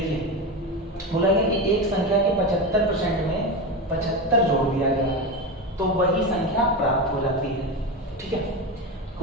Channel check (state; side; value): normal; both; correlation 0.19